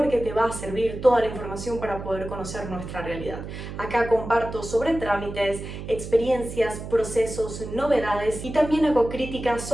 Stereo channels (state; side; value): noise; right; hum, 9 dB below the sound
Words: te va a servir toda la información para poder conocer nuestra realidad. Acá comparto sobre trámites, experiencias, procesos, novedades y también hago críticas